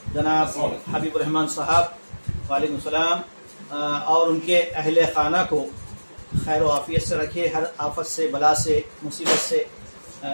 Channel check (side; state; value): both; inverted; correlation -1.00